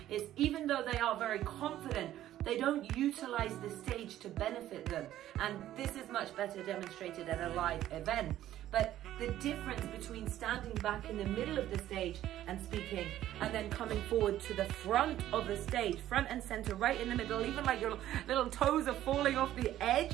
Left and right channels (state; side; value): quieter; left; 12.9 dB